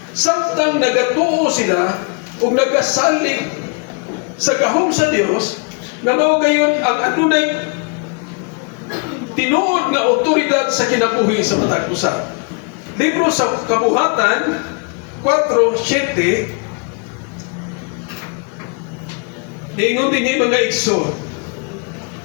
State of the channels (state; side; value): quieter; right; 35.9 dB